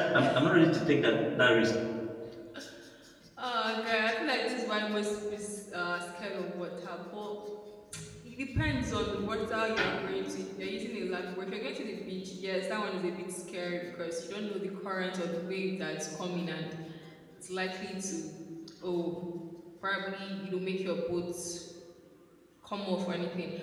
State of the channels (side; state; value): both; identical; correlation 1.00